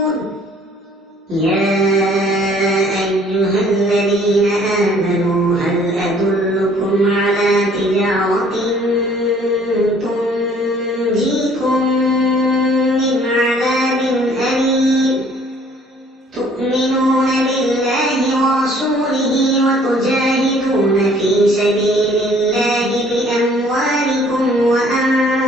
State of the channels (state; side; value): normal; both; correlation 0.57